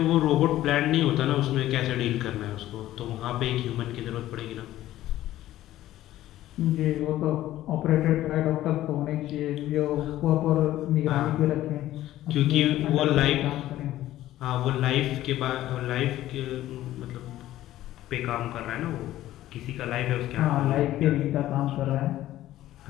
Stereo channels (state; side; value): quieter; right; 14.2 dB